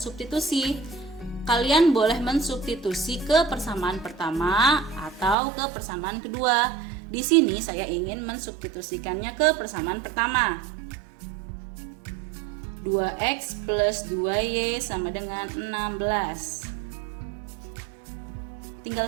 Kalian boleh mensubstitusi ke persamaan pertama atau ke persamaan kedua. Di sini saya ingin mensubstitusikannya ke persamaan pertama. 2x plus 2y sama dengan 16.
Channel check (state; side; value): drops out; left; at 5.4 s